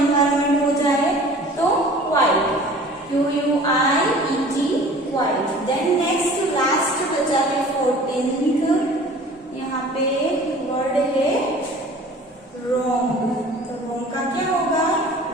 हो जाए तो quite, Q-U-I-E-T, quite. Then next last बचा है 14th, यहाँ पे वर्ड है रॉन्ग, तो रॉन्ग का क्या होगा?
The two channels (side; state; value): both; normal; correlation 0.45